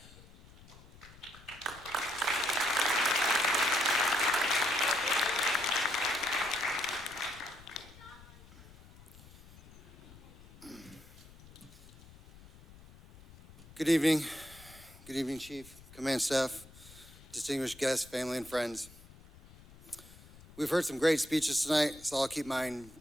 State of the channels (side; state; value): left; noise; rumble, 21 dB below the sound